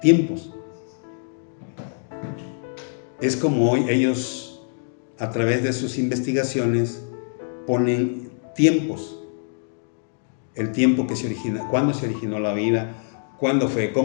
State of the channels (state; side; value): silent; right; digital silence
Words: tiempos. Es como hoy ellos, a través de sus investigaciones, ponen tiempos. El tiempo que se origina, cuándo se originó la vida, cuándo fue,